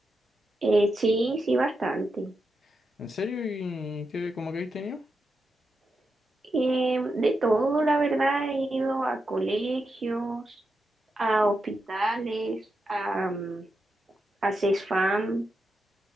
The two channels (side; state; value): both; normal; correlation 0.86